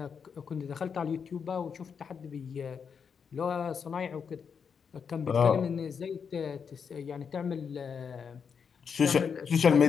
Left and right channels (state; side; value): quieter; right; 6.5 dB